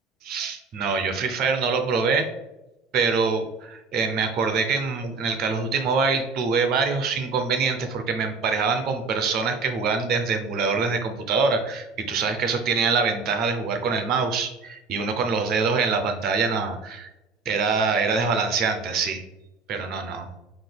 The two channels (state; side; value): quieter; left; 4.4 dB